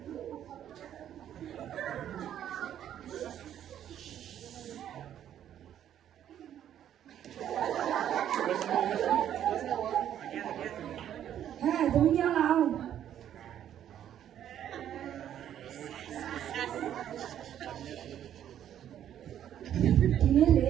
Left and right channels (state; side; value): quieter; left; 10.5 dB